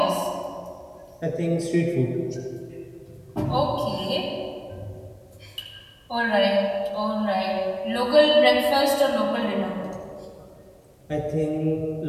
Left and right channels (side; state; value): both; identical; correlation 1.00